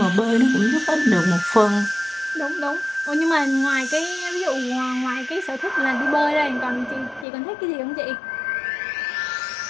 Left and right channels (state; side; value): drops out; right; at 7.2 s